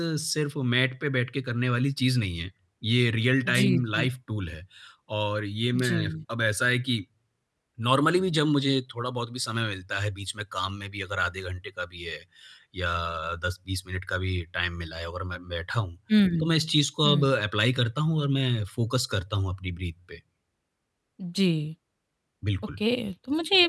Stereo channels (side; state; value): both; identical; correlation 1.00